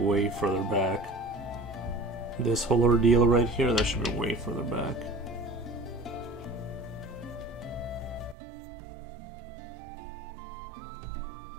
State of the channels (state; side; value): drops out; left; at 8.3 s